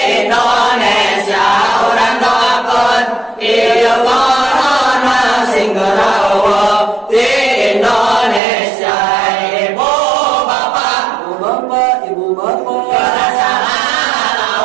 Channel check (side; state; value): left; drops out; at 8.4 s